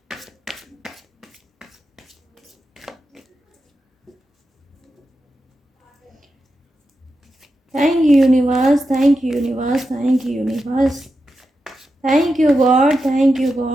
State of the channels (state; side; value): normal; both; correlation 0.89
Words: Thank you universe, thank you universe, thank you universe, thank you God, thank you